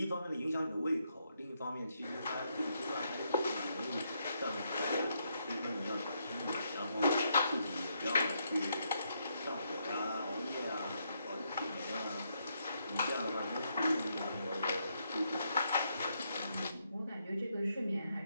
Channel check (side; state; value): both; inverted; correlation -0.77